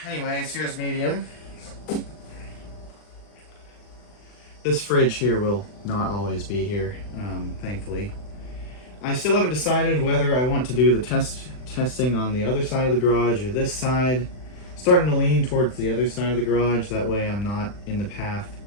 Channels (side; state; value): right; late; 40 ms